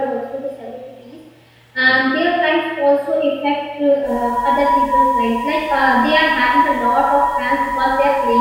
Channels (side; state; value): both; identical; correlation 1.00